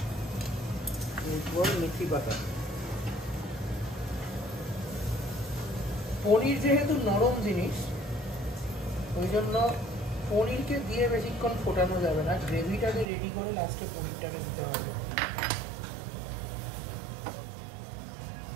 এরপর মেথি পাতা। পনির যেহেতু নরম জিনিস, ওই জন্য পনিরকে দিয়ে বেশিক্ষণ ফোটানো যাবে না, গ্রেভিটাকে রেডি করে লাস্টে পনিরটাকে দিতে হবে।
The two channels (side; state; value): left; drops out; at 13.1 s